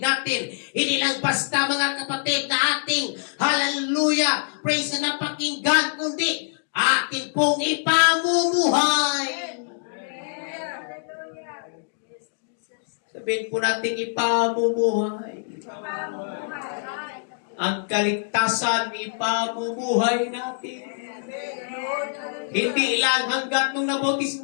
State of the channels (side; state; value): right; silent; digital silence